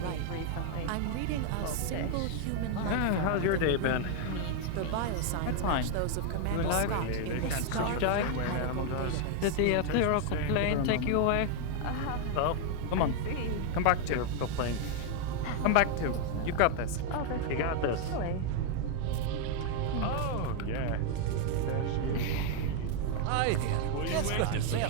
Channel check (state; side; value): different; both; correlation 0.00